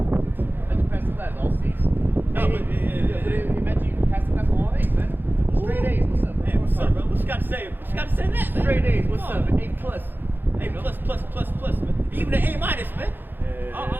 How'd you pass the class? All C's. No, but imagine you passed the class on all A's, man. Straight A's. What's up, bro? Hey, what's up, bro? What you got to say? What you got to say that, man? Straight A's. What's Come up? on. A plus. A plus, man. Even an A minus, man.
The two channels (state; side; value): late; left; 0.095 ms